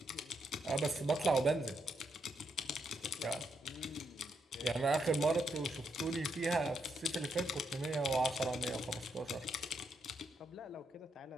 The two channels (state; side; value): normal; both; correlation 0.79